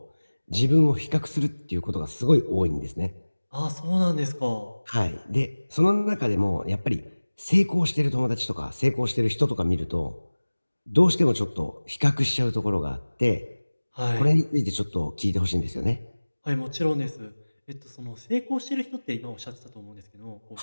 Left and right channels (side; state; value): both; inverted; correlation -1.00